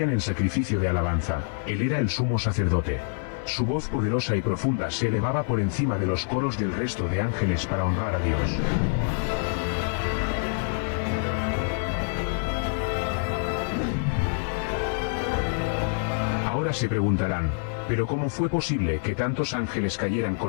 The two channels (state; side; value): silent; right; digital silence